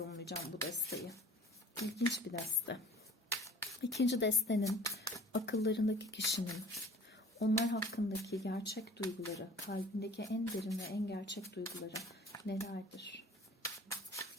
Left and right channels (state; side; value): normal; both; correlation 0.47